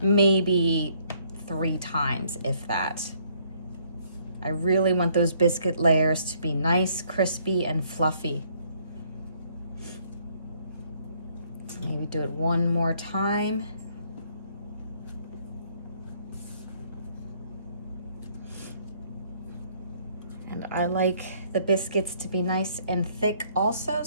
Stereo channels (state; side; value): inverted; both; correlation -0.65